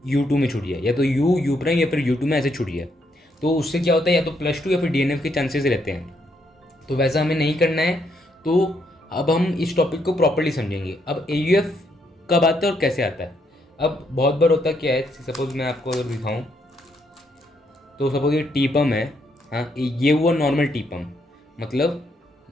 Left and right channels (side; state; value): both; normal; correlation 0.75